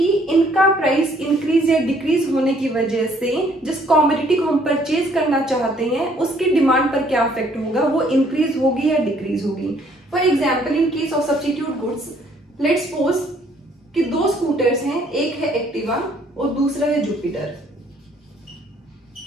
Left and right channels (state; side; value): normal; both; correlation 0.63